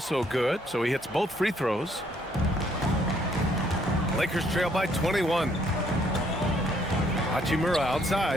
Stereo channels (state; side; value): normal; both; correlation 0.67